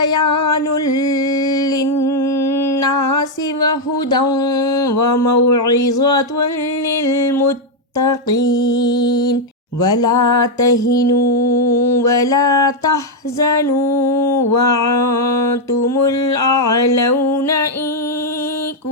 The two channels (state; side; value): normal; both; correlation 0.00